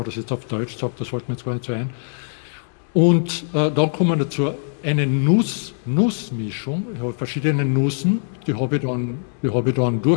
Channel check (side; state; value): right; silent; digital silence